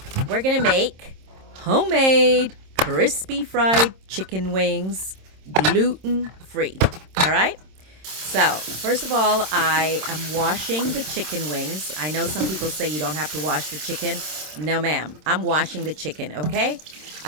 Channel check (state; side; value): late; left; 26 ms